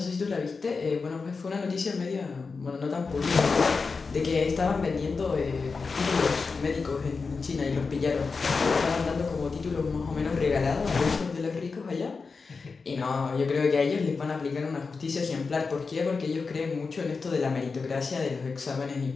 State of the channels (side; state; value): right; quieter; 4.6 dB